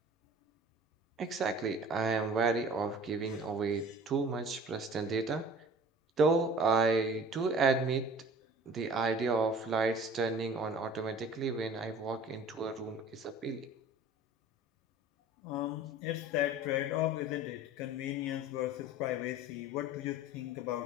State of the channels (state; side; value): normal; both; correlation 0.45